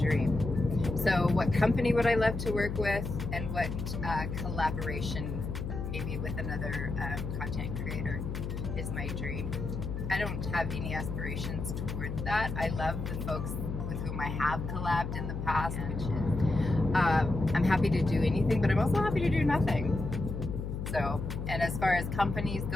So what company would I love to work with, and what collaboration, maybe with another content creator, is my dream? I don't have any aspirations towards that. I love the folks with whom I have collabed in the past, which is, I'm happy to do anything, but I'm also happy to do nothing. So, and as far as companies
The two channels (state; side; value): noise; left; hum, 5 dB below the sound